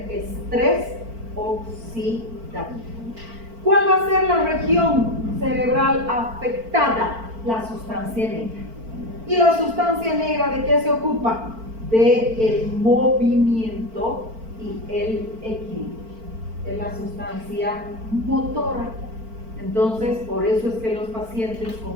estrés oxidativo. ¿Cuál va a ser la región cerebral afectada? La sustancia negra. ¿Y la sustancia negra de qué se ocupa? Del movimiento y el equilibrio. Es la sustancia motora. Entonces, por eso es que los pacientes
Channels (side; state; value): left; late; 4.5 ms